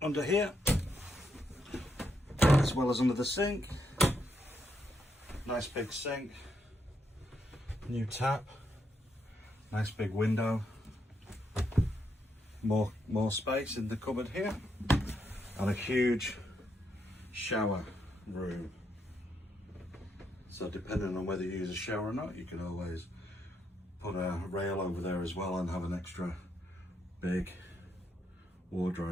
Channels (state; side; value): normal; both; correlation 0.79